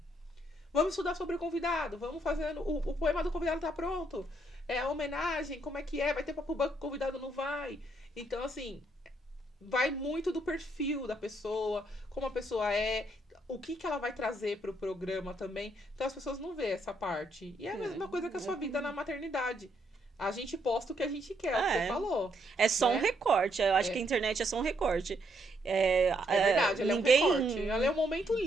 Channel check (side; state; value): both; normal; correlation 0.74